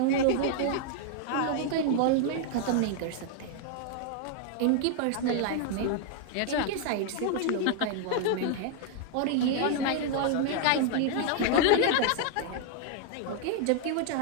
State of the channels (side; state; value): both; different; correlation 0.00